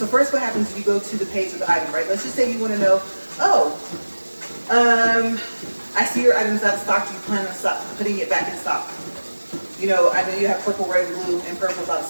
first what happens is you go to the page of the item, right? Let's just say you want to know, I see your item's out of stock. Do you plan on putting it back in stock? You know, I know you have purple, red, blue, and purple's out of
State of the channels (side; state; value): both; inverted; correlation -1.00